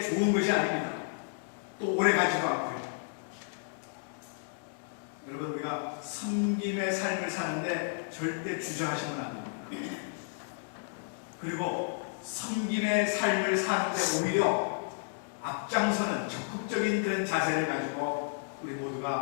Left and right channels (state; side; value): silent; right; digital silence